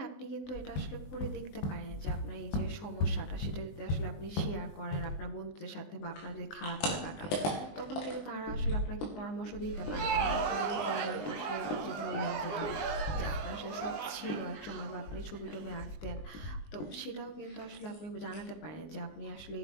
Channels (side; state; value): right; late; 20 ms